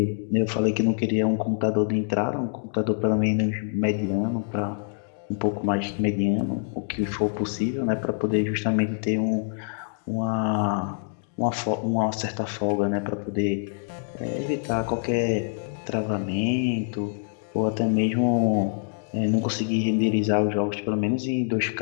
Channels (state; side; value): silent; right; digital silence